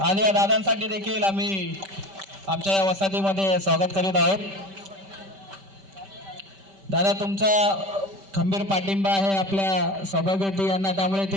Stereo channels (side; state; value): left; late; 5.1 ms